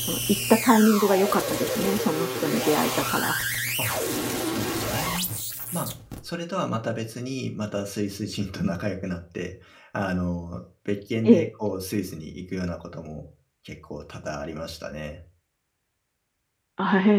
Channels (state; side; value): identical; both; correlation 1.00